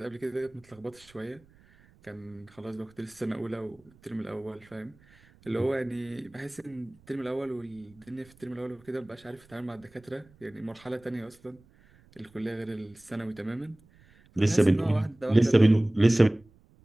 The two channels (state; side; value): noise; right; rumble, 28 dB below the sound